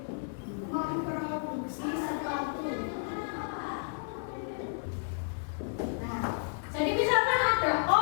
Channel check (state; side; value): silent; right; 56 dB below the other